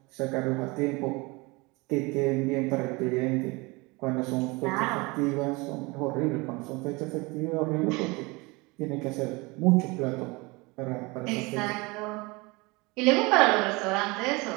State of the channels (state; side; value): quieter; left; 25.3 dB